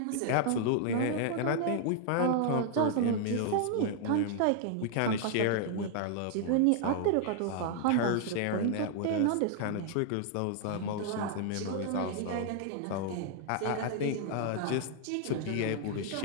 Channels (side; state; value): both; different; correlation 0.00